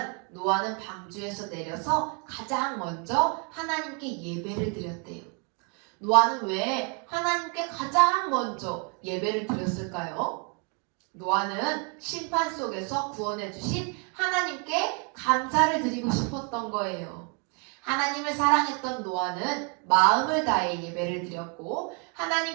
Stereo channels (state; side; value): quieter; left; 36.6 dB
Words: 노아는 방주에서 내려서 가장 먼저 하나님께 예배를 드렸대요. 노아는 왜 하나님께 가장 먼저 예배를 드렸을까요? 노아는 심판 속에서 구원해 주신 하나님께 감사를 드리고 싶었던 거예요. 하나님을 사랑했던 노아는 마음을 다해 예배를 드렸고